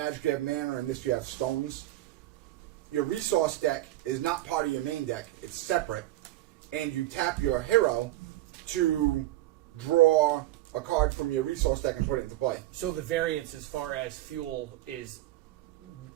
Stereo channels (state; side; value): quieter; left; 15.7 dB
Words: you have mana, and this you have stones. Your resource deck is not part of your main deck. It's separate. And you tap your hero to draw a card from your resource deck and put it into play. So the variance as far as fuel is